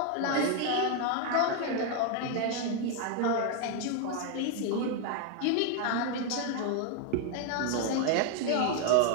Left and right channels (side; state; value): both; different; correlation 0.01